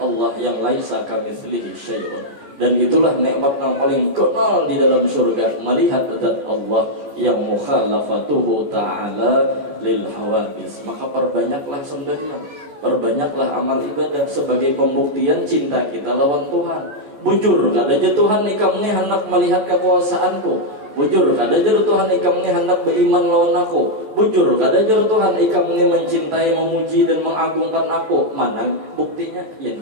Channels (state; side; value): late; left; 14 ms